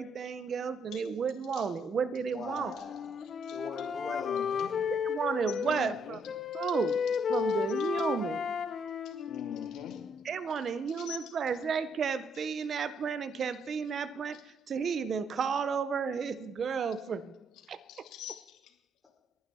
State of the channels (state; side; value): normal; both; correlation 0.71